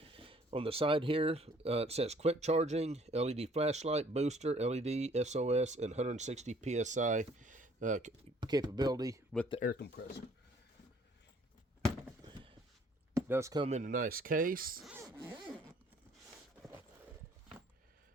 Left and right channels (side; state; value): both; normal; correlation 0.59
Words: On the side here, it says quick charging, LED flashlight, booster, LED, SOS, and 160 PSI capability with the air compressor. It does come in a nice case.